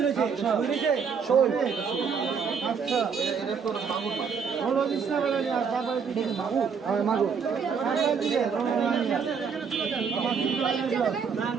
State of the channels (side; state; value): left; quieter; 6.2 dB